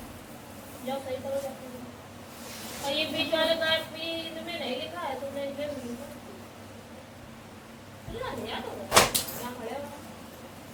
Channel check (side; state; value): both; identical; correlation 1.00